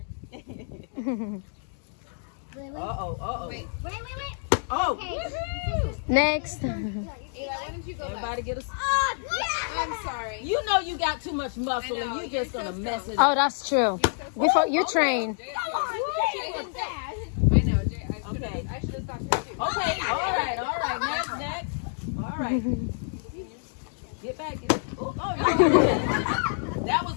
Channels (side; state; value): right; silent; digital silence